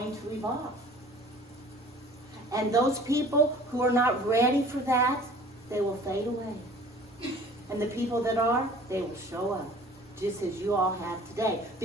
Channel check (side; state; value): both; normal; correlation 0.48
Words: to evolve. And those people who are not ready for that, they will fade away. And the people that are, they will show up, just as you all have today.